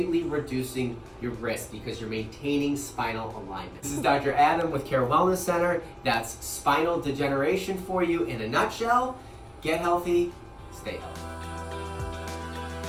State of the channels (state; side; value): identical; both; correlation 1.00